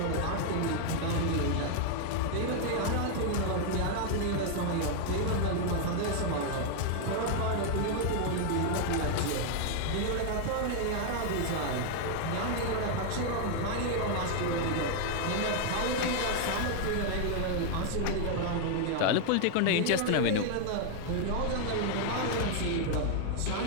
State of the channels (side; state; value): both; different; correlation 0.00